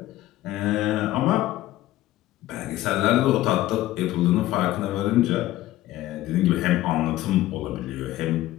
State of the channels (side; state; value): right; quieter; 15.5 dB